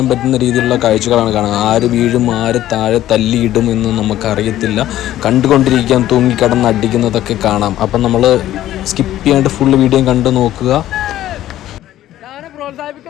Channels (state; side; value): quieter; right; 13.4 dB